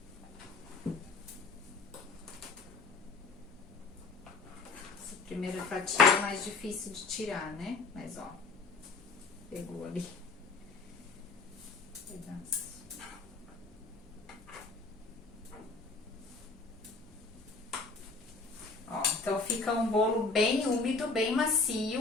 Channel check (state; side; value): quieter; right; 4.0 dB